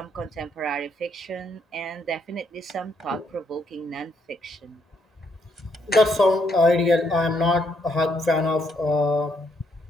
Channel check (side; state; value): both; normal; correlation 0.73